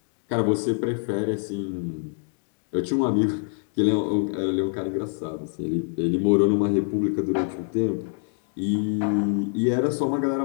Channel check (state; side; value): silent; right; 56 dB below the other